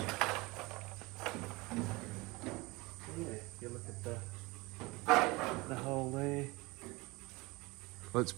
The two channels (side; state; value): left; quieter; 23.5 dB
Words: Yeah, you look at the hole there. Let's